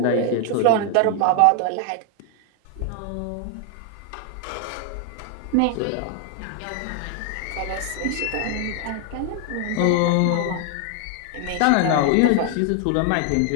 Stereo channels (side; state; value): both; different; correlation 0.00